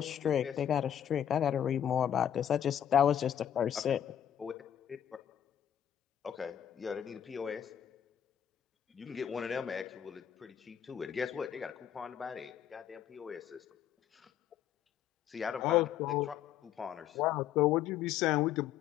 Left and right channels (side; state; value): right; quieter; 9.9 dB